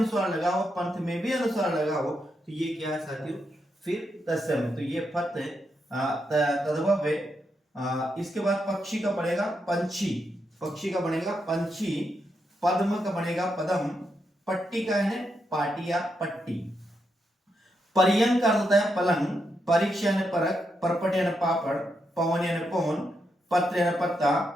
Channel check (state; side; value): normal; both; correlation 0.82